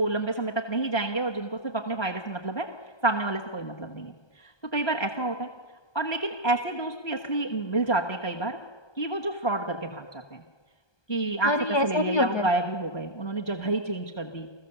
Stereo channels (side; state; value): right; late; 1.2 ms